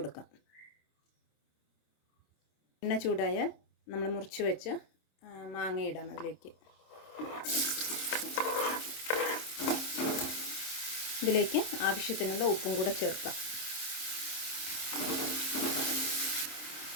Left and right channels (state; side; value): late; right; 26 ms